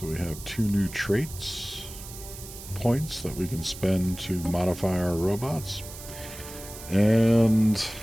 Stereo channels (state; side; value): noise; right; hiss, 14 dB below the sound